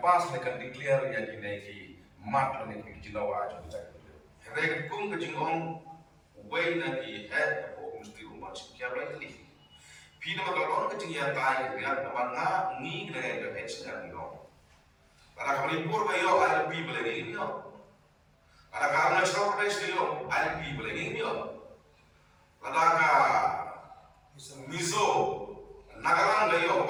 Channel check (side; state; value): both; identical; correlation 1.00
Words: kan declare ya kidai ki mat ne ki jinawa jong kejak henry kum ka jingong way na ki head of mesti rumah sinkia rightly Pina magalon ka jing ya tay ya naman nga ni na ga head sa no para kami pur ba yo ILP balagi yo para ka na sa press yo ILP balagi yo para ka mizo nagalang ga yo